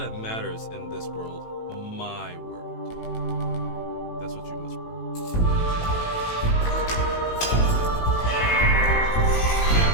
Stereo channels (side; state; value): right; late; 18 ms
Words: matters in this world. My world. That's what you must prove. Man,